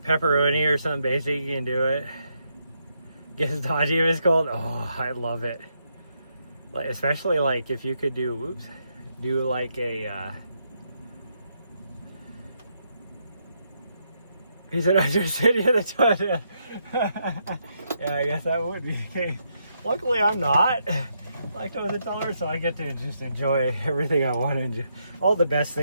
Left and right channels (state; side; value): inverted; both; correlation -0.79